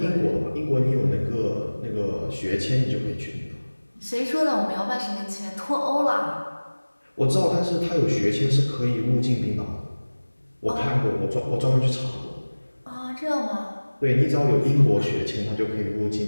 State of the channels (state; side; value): inverted; both; correlation -1.00